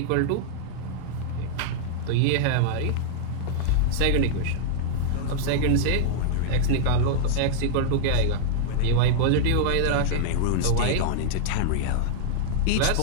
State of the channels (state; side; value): different; both; correlation -0.01